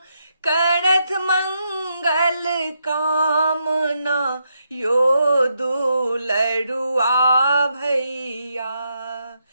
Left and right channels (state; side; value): inverted; both; correlation -0.80